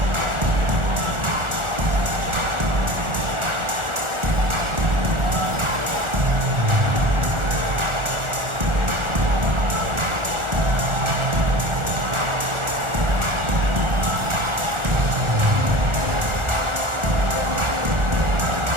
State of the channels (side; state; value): left; late; 1.4 ms